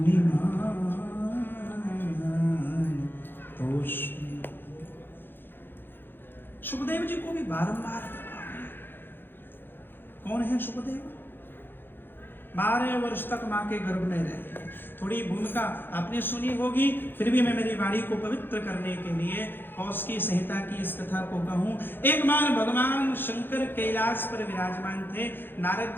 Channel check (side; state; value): right; late; 0.099 ms